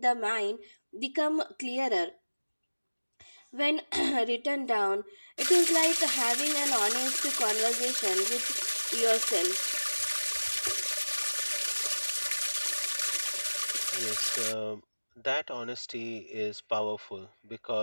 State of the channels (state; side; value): inverted; both; correlation -1.00